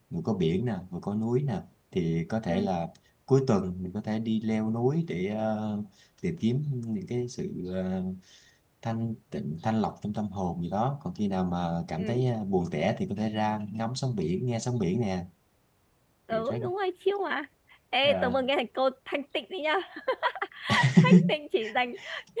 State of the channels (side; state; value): both; identical; correlation 1.00